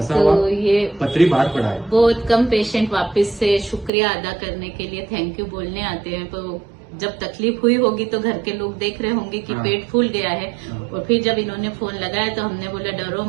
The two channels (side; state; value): left; drops out; at 3.9 s